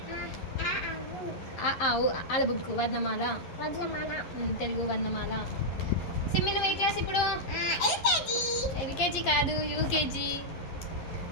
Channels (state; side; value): late; right; 11 ms